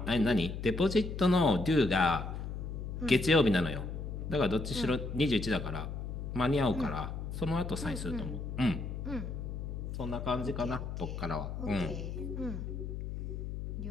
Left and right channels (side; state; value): left; noise; hum, 6 dB below the sound